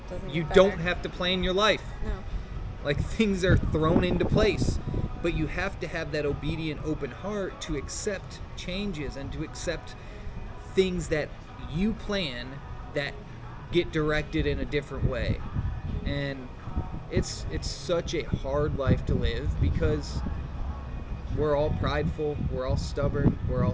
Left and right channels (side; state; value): both; identical; correlation 1.00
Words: Doesn't you get don't better. have to plan your life. No. Like, things are thrown into place, but you have to have that obedient, open heart to accept changes and to accept things that you plan that get directed in a different way. And it's such a hard life to live because we're all prideful, we're all stubborn, we're all